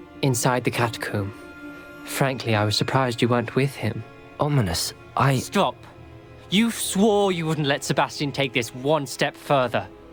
Inside the catacomb. Frankly, I was surprised you weren't with him. Ominous, Stop. You swore you wouldn't let Sebastian take this one step further.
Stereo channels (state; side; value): identical; both; correlation 1.00